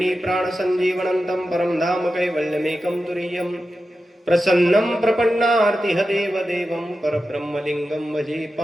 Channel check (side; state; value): both; normal; correlation 0.92